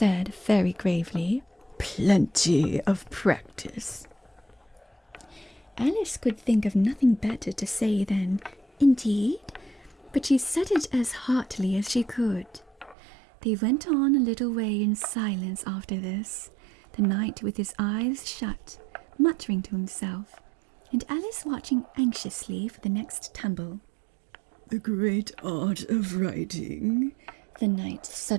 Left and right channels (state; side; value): drops out; left; at 13.0 s